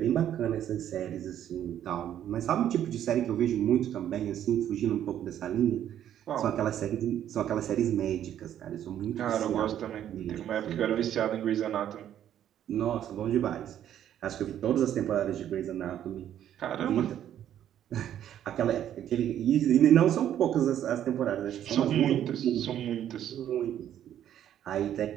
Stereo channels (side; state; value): left; quieter; 10.7 dB